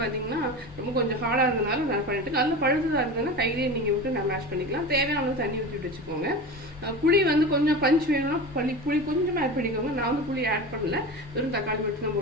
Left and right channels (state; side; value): normal; both; correlation 0.29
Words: பார்த்தீங்கன்னா ரொம்ப கொஞ்சம் ஹார்டாக இருந்ததுனால நான் பண்ணிவிட்டு, நல்ல பழுத்ததாக இருந்ததுன்னா கையிலேயே நீங்கள் விட்டு நான் மேஷ் பண்ணிக்கலாம். தேவையான தண்ணி ஊற்றிட்டு வச்சுக்கோங்க. புளி கொஞ்சம் பஞ்ச் வேணும்னா புளி கொஞ்சம் ஆட் பண்ணிக்கோங்க. நான் புளி ஆட் பண்ணல, வெறும் தக்காளி மட்டும் தான்